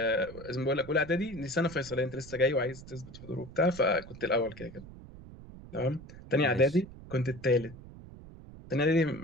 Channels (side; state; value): right; noise; rumble, 16 dB below the sound